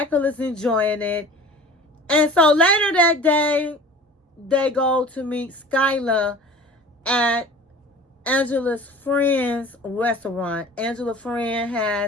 is enjoying it. And so later that day, they go to meet Skylar at Angela's friend's restaurant. Angela's friend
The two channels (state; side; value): normal; both; correlation 0.42